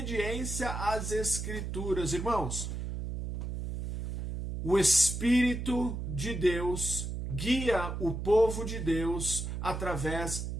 às Escrituras. Irmãos, o Espírito de Deus guia o povo de Deus através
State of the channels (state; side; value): noise; right; hum, 5 dB below the sound